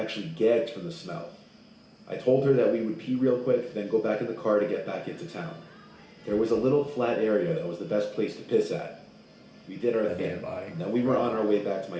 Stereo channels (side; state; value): both; identical; correlation 1.00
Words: actually gagged from the smell. I told her that we would pee real quick, then go back in the car to get back into town. There was a little flat area that was the best place to piss at. We did our A thing, dead body. and then we were on our way back to my